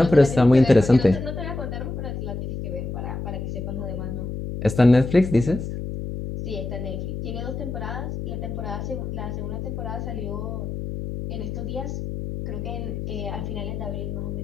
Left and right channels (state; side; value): noise; left; hum, 5 dB below the sound